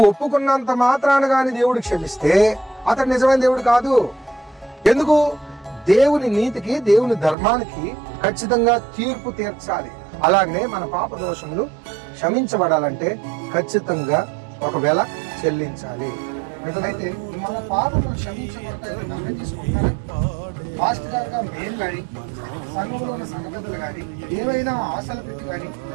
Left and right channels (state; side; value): drops out; left; at 7.4 s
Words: ఒప్పుకున్నంత మాత్రాన గాని దేవుడు క్షమిస్తే అతడు నిజమైన దేవుడు కాదు. ఎందుకు? దేవుని నీతికి, దేవుని ధర్మానికి ఖచ్చితంగా తీర్పు తీర్చాలి. అలాగనే మన పాప దోషములు క్షమించబడాలంటే ఖచ్చితంగా ఒక వెల చెల్లించాలి. అయితే మన పాపములు క్షమించబడతాయని నమ్మకం తీసుకుంటారా? పాస్టర్ గారుగా మేము కానీ, సంఘంలో ఉన్న సంఘపెద్దలు కానీ, ఏవైనా ఆశలు పెట్టి కానీ,